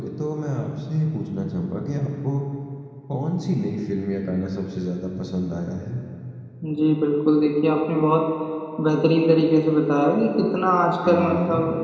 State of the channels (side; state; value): both; identical; correlation 1.00